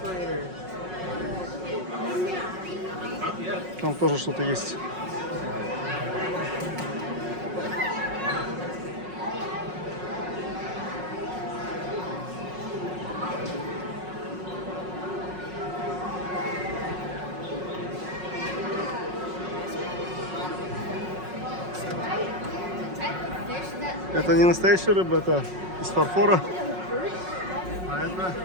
Там тоже что-то есть. Это не настоящая рыба, это из фарфора. А это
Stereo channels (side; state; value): left; late; 5.5 ms